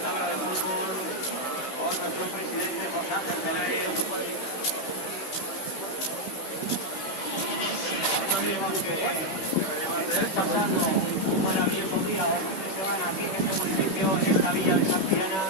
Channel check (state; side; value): late; right; 16 ms